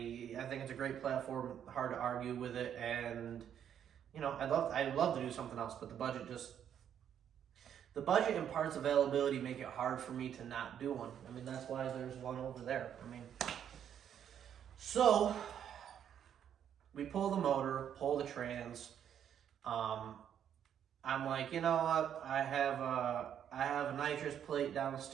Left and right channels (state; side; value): quieter; left; 9.2 dB